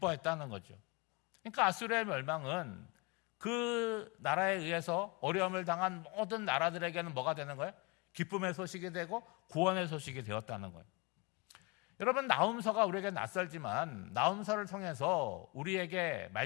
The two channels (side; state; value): right; quieter; 27.8 dB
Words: 거죠. 그러니까 아수르의 멸망은 그 나라에 의해서 어려움을 당한 모든 나라들에게는 뭐가 되는 거예요? 기쁨의 소식이 되고 구원의 소식이 되었다는 거예요. 여러분, 나훔서가 우리에게 낯설지만 나훔서를 통해서 우리에게